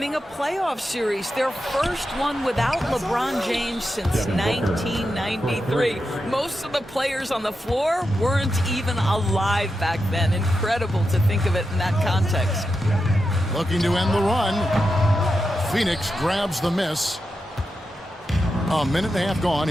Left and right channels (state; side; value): normal; both; correlation 0.88